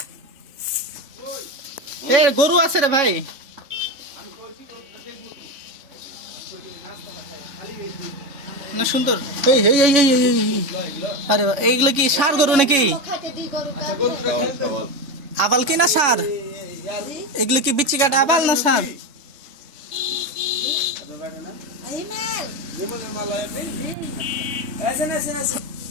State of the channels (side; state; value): left; late; 3.6 ms